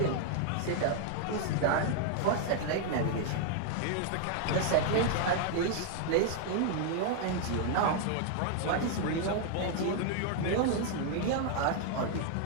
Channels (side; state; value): both; different; correlation 0.00